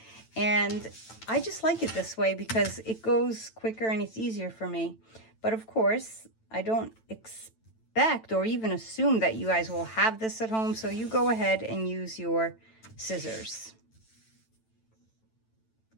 And I just like it this way because it goes quicker and it's easier for me. But of course, I don't expect or even assume that you guys will have this at home, so you go ahead and use your scissors.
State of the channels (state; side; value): late; right; 9.0 ms